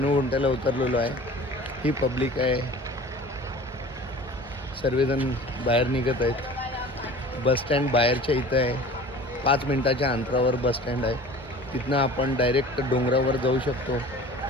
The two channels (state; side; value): normal; both; correlation 0.42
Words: उतरलेलो आहे. ही पब्लिक आहे. सर्वजण बाहेर निघत आहेत. बसस्टँड बाहेरच्या इथं आहे. 5 मिनिटाच्या अंतरावर बसस्टँड आहे. तिथनं आपण डायरेक्ट डोंगरावर जाऊ शकतो